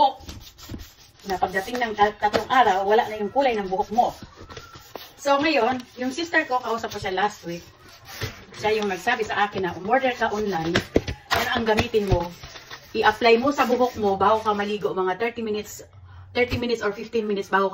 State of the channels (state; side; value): identical; both; correlation 1.00